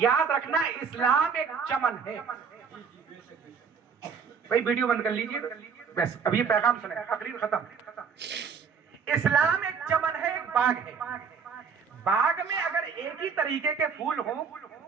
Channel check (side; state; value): left; quieter; 6.1 dB